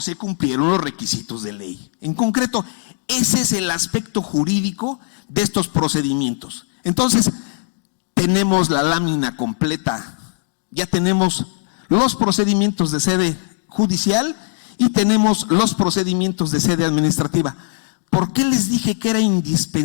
cumplieron los requisitos de ley. En concreto, ese es el aspecto jurídico de estos procedimientos. Entonces, tenemos la lámina completa, ya tenemos los procedimientos de sede judicial y tenemos los procedimientos de sede administrativa. ¿Por qué les dije que era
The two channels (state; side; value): silent; right; digital silence